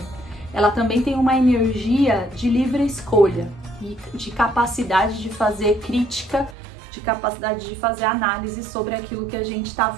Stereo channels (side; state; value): left; drops out; at 6.6 s